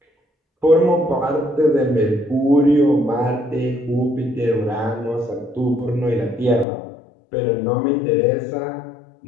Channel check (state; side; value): drops out; right; at 6.7 s